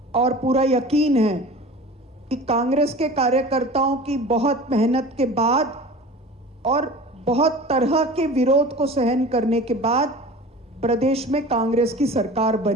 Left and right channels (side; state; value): both; normal; correlation 0.38